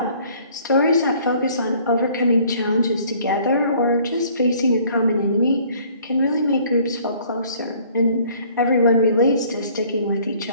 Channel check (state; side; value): inverted; both; correlation -0.57